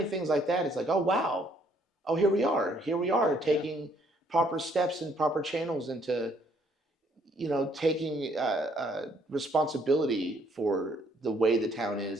things like that, it's like, oh wow, oh here we are taking proper steps and proper channels into, taking responsibility for the way the town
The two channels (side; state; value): both; normal; correlation 0.66